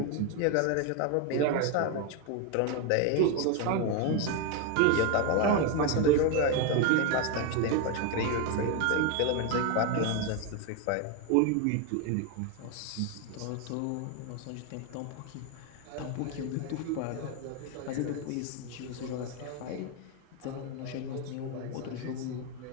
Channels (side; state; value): both; different; correlation 0.01